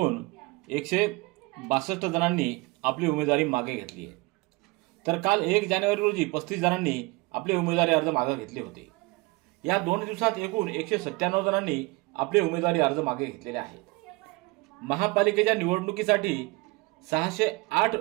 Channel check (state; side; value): quieter; left; 24.0 dB